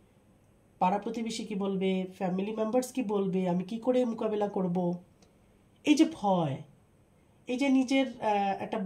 পাড়া প্রতিবেশী কি বলবে, ফ্যামিলি মেম্বার্স কি বলবে, আমি কি করে মোকাবেলা করব, এই যে ভয়, এই যে নিজের একটা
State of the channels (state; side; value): identical; both; correlation 1.00